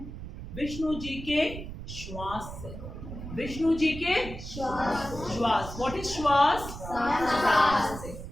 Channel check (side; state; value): right; noise; rumble, 10 dB below the sound